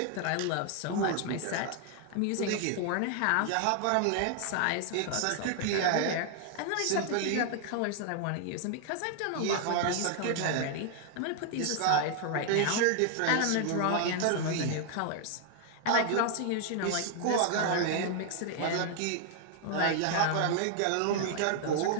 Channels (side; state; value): both; different; correlation 0.00